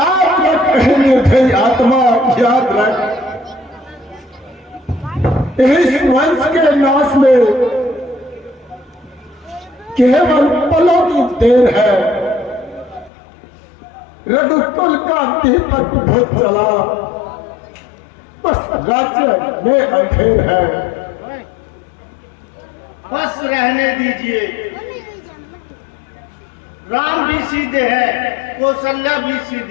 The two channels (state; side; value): drops out; right; at 13.1 s